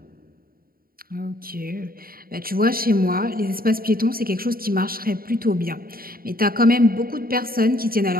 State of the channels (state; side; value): late; left; 0.43 ms